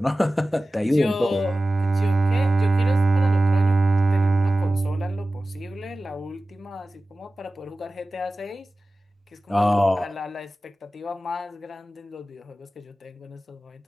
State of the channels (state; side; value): normal; both; correlation 0.96